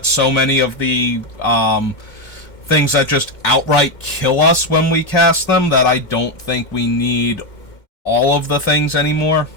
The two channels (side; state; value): right; late; 2.1 ms